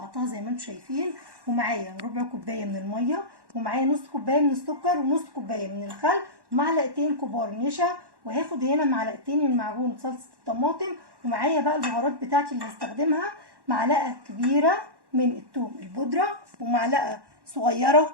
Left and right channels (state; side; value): late; left; 1.1 ms